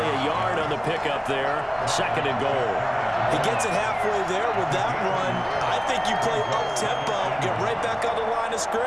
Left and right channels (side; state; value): both; identical; correlation 1.00